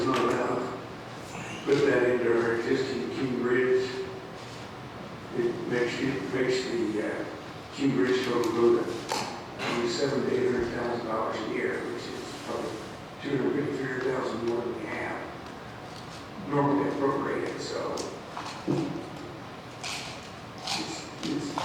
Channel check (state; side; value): identical; both; correlation 1.00